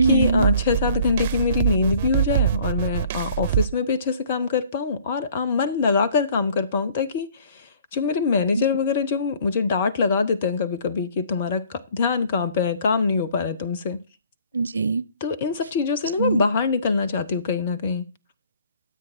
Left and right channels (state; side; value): inverted; both; correlation -0.54